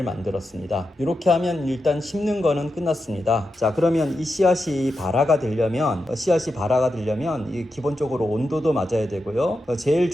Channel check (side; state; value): both; normal; correlation 0.88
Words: 만들었습니다. 이렇게 하면 일단 심는 거는 끝났습니다. 자, 그러면 이 씨앗이 발화가 되려면 이 기본적으로 온도도 맞아야 되고요. 제일